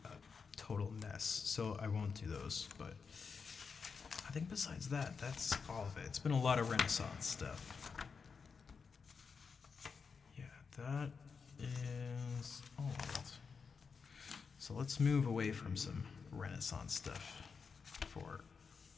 a total mess, so I won't do those, but I think besides that, that's all of it. It's been a lot of Renaissance stuff. Yeah, that is old. So let's move away from some Renaissance stuff for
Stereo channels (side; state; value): right; quieter; 5.5 dB